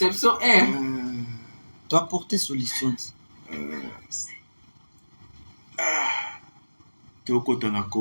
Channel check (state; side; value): inverted; both; correlation -1.00